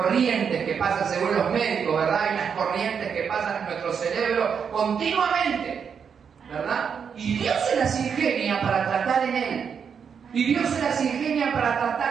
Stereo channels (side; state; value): left; quieter; 6.8 dB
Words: que pasan según los médicos, ¿verdad? Hay unas corrientes que pasan en nuestro cerebro continuamente, ¿verdad? Y Dios se las ingenia para tratar en Él. Y Dios se las ingenia para